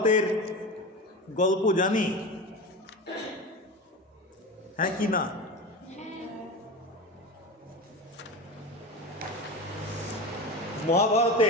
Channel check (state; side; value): normal; both; correlation 0.26